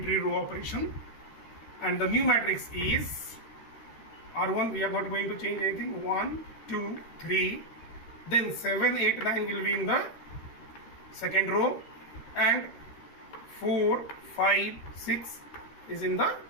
row operation, and the new matrix is R1. We are not going to change anything. 1, 2, 3, then 7, 8, 9 will be in the second row, and 4, 5, 6 is in the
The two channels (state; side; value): late; right; 13 ms